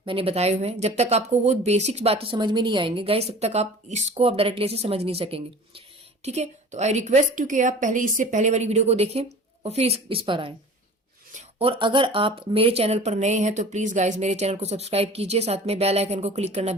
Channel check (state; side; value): normal; both; correlation 0.41